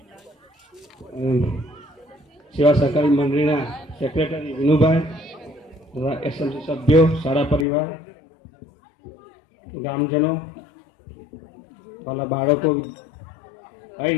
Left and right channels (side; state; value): right; drops out; at 7.7 s